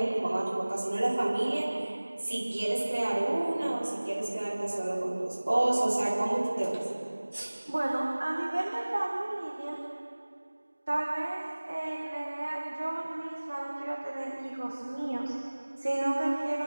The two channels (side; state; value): both; inverted; correlation -1.00